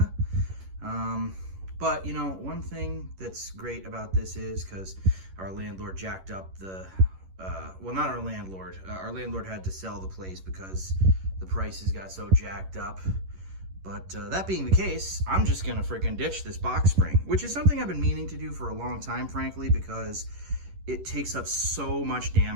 But, you know, one thing that's great about this is because our landlord jacked up the, well, not our landlord. Our landlord had to sell the place because the prices got so jacked up. But that being the case, I'm just going to freaking ditch this box spring, which is something I've been meaning to do for a long time, frankly, because it takes up so much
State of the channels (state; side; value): late; left; 11 ms